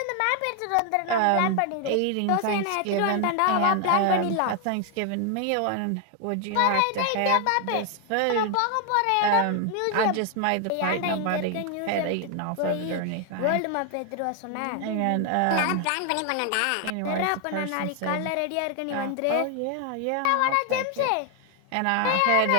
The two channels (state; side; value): different; both; correlation 0.00